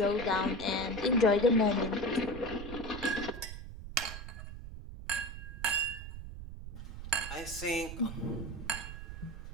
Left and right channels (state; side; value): noise; right; rumble, 10 dB below the sound